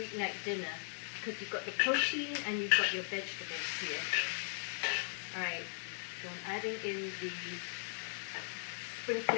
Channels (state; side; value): silent; right; digital silence